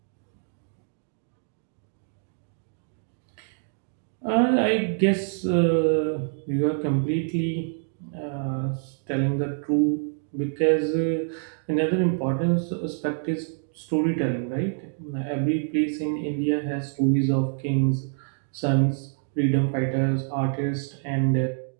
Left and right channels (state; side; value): silent; left; digital silence